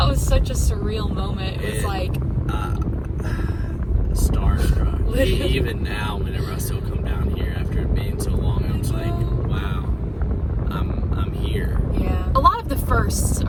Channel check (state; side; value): identical; both; correlation 1.00